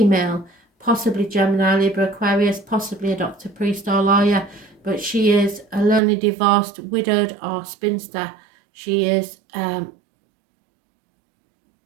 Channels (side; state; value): left; drops out; at 6.0 s